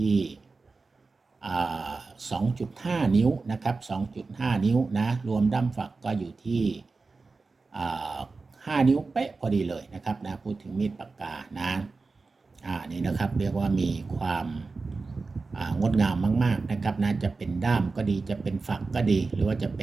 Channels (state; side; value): quieter; left; 4.0 dB